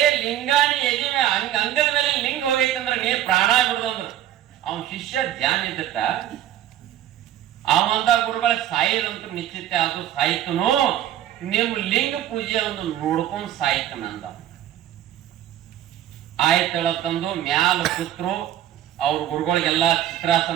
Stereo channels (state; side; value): quieter; left; 11.9 dB